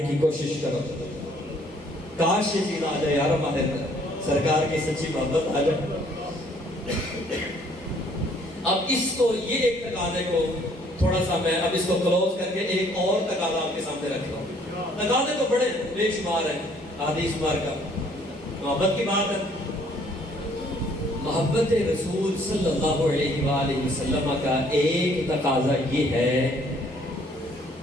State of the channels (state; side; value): normal; both; correlation 0.62